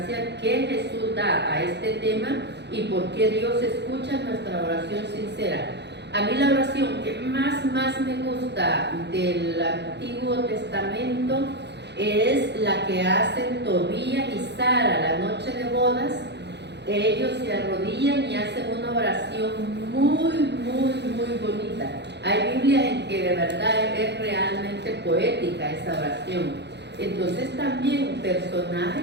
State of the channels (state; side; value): late; left; 0.50 ms